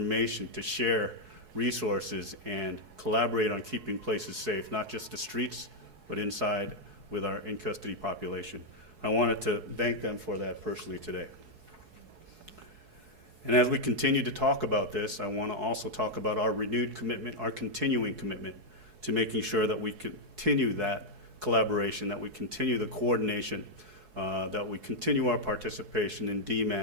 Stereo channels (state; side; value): late; left; 4.7 ms